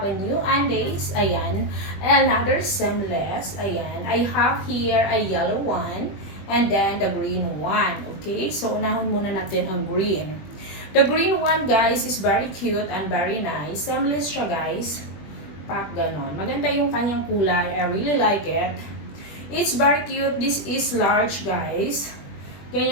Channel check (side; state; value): right; late; 21 ms